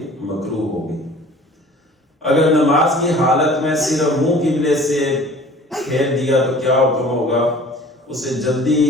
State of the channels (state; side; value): normal; both; correlation 0.47